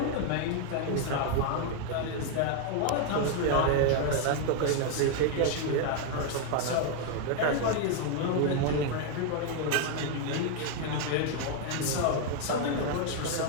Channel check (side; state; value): both; different; correlation 0.00